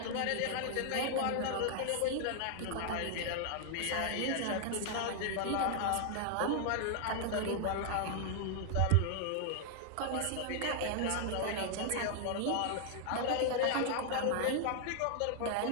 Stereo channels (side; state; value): both; different; correlation 0.00